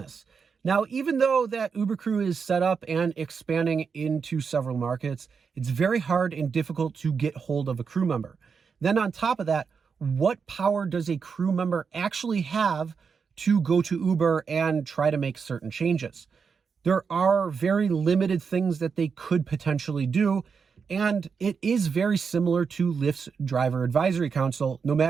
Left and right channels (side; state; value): left; quieter; 5.8 dB